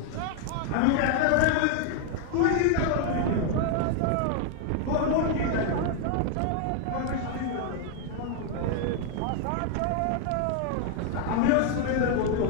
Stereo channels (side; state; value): both; different; correlation 0.00